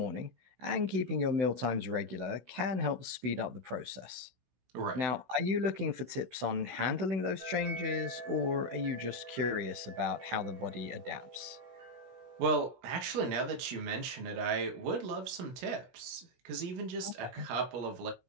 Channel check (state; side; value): late; left; 16 ms